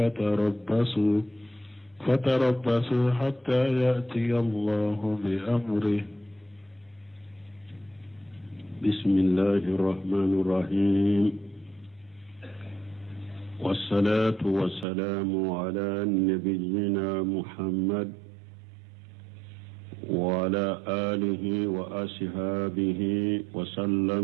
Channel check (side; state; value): left; drops out; at 14.9 s